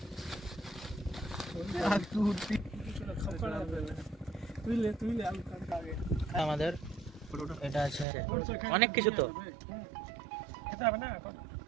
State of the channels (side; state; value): left; drops out; at 8.1 s